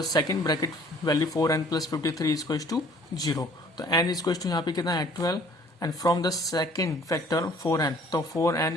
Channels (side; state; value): both; normal; correlation 0.55